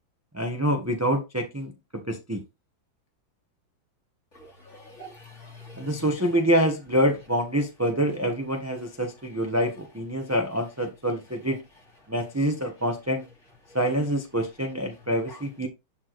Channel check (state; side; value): normal; both; correlation 0.01